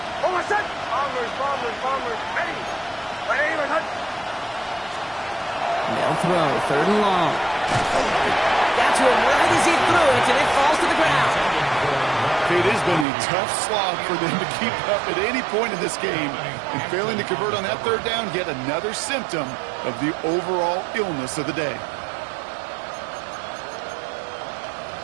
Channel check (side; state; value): left; drops out; at 13.1 s